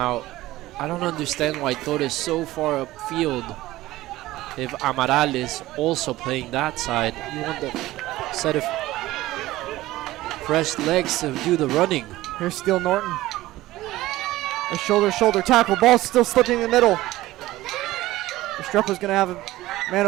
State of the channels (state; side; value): quieter; left; 16.9 dB